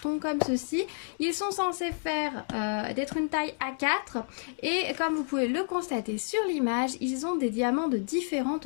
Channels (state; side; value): silent; right; digital silence